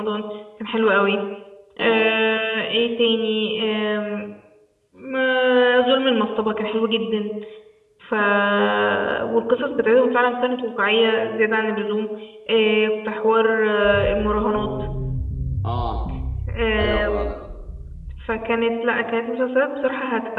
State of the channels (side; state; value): both; identical; correlation 1.00